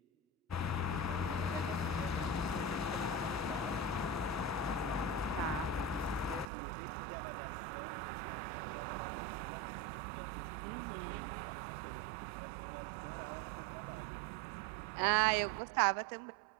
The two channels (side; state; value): left; drops out; at 6.5 s